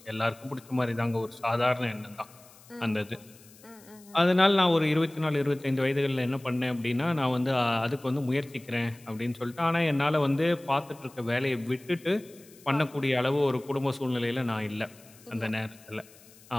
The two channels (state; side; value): noise; left; hiss, 24 dB below the sound